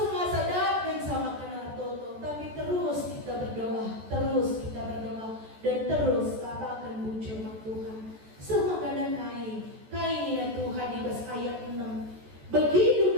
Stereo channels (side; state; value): left; late; 14 ms